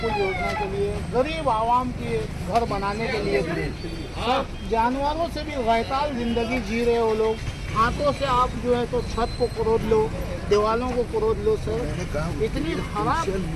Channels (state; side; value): identical; both; correlation 1.00